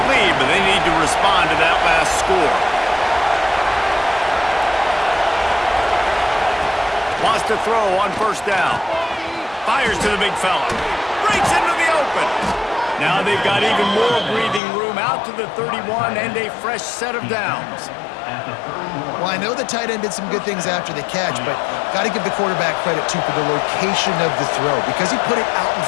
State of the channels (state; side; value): drops out; right; at 14.6 s